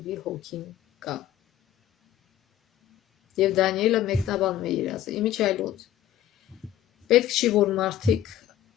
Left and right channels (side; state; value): right; quieter; 11.8 dB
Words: հոգին կա։ Եվ Դանիելը մեկնաբանում է երազը։ Իմիջիայլոց պետք չի, որ մարդիկ